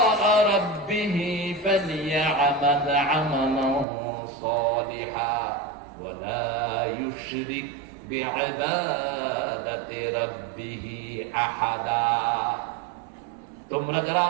রাব্বিহি ফালইআমাল আমালান সালিহা ওয়া লা ইউশরিক বিইবাদাতি রাব্বিহি আহাদা। তোমরা যারা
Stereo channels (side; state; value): left; drops out; at 3.9 s